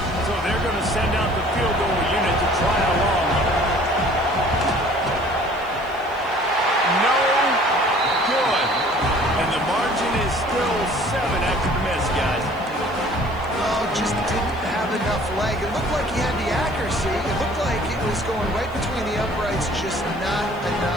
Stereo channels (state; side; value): noise; left; hiss, 28 dB below the sound